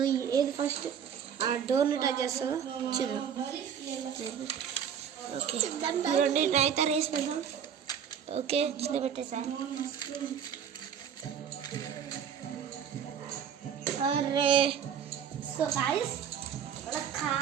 ఏది ఫస్ట్ ఆ డోర్ని టచ్ చేస్తుందో చూద్దాం. ఓకే చూడండి, నైతే రేస్ పెడదాం. ఓకే చిన్న పెట్టేసా. అరే సో గాయ్స్,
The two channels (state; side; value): quieter; left; 8.2 dB